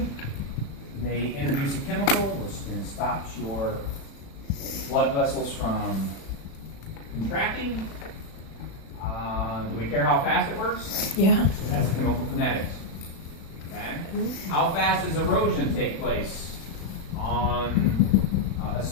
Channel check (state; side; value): late; right; 36 ms